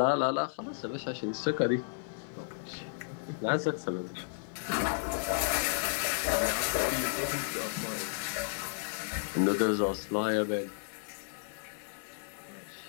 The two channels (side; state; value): right; silent; digital silence